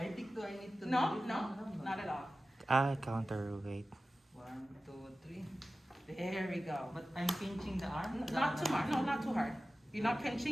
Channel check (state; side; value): normal; both; correlation 0.95